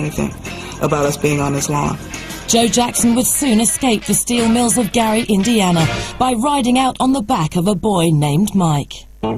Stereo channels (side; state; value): both; identical; correlation 1.00